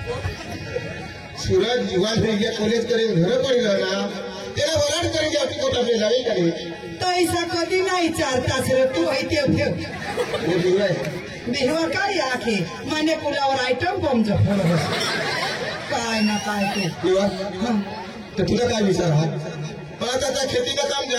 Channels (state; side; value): identical; both; correlation 1.00